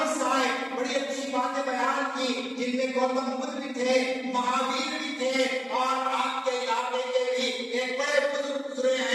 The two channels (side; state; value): both; identical; correlation 1.00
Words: آئے، بڑی اچھی باتیں بیان کی، جن میں گوتم بدھ بھی تھے، مہاویر بھی تھے، اور آپ کے علاقے کے بھی ایک بڑے بزرگ گزرے